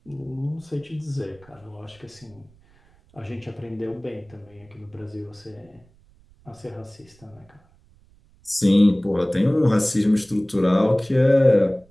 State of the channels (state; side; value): noise; right; rumble, 30 dB below the sound